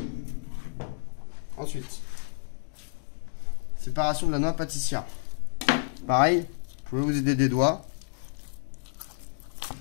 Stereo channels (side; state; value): right; silent; digital silence